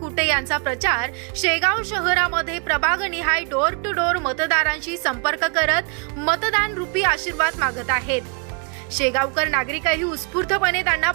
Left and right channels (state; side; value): quieter; left; 37.2 dB